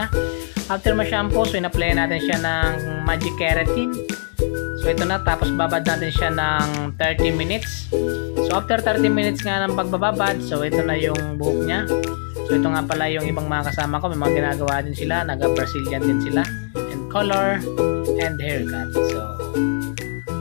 After ma-shampoo, so in-apply natin siya ng Magic Keratin. So ito na, tapos babad natin siya ng 30 minutes. So after 30 minutes nga ng pagbababad, so ito na yung buhok niya. So ito nga pala yung ibang mga kasama ko, may mga ginagawa din sila, naga-Brazilian din sila, and color and haircut. So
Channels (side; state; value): right; silent; 65 dB below the other